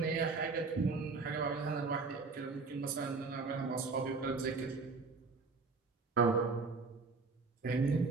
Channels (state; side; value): quieter; left; 4.2 dB